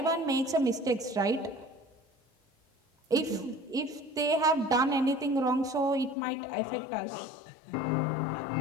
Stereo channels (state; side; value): drops out; right; at 6.2 s